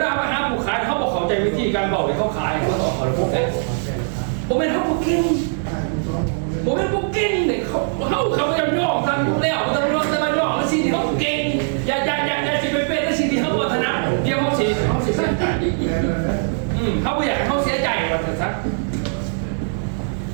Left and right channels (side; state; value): left; silent; digital silence